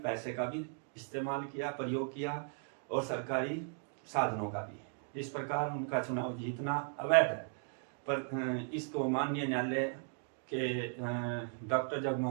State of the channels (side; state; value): left; silent; 53 dB below the other